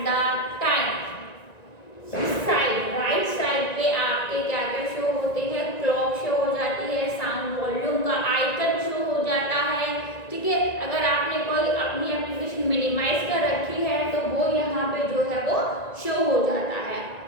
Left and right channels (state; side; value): late; right; 1.9 ms